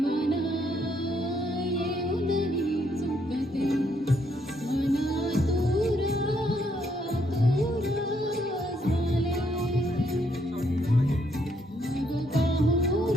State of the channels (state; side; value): normal; both; correlation 0.72